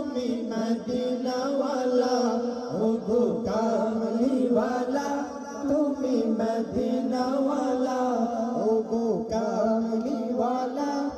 मदीना वाला, ओ गो कामली वाला तुम्ही मदीना वाला, ओ गो कामली वाला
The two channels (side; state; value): both; identical; correlation 1.00